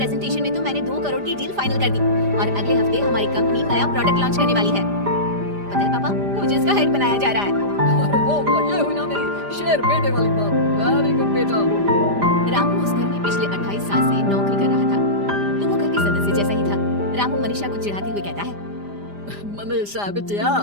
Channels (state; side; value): late; left; 5.0 ms